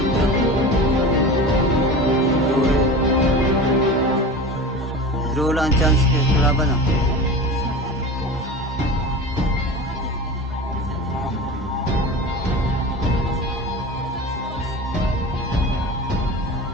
Draw lang chance ke kalaban ah.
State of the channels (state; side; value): normal; both; correlation 0.32